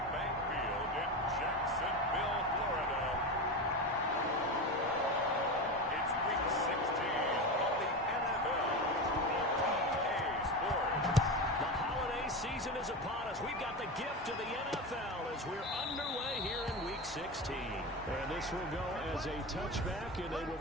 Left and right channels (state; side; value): normal; both; correlation 0.21